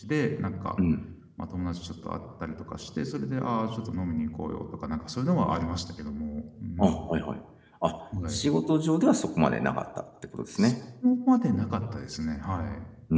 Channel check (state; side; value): identical; both; correlation 1.00